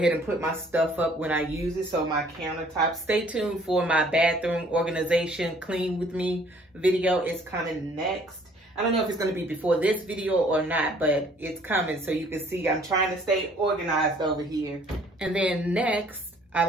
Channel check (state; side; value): normal; both; correlation 0.58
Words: and put my stuff up when I use it. So my countertop. Stay tuned for my bathroom organization clean with me video. It's coming next. I don't know if it's going to be before this video or not, but it's coming. So you can see I'm trying to stay organized over here. And then next, I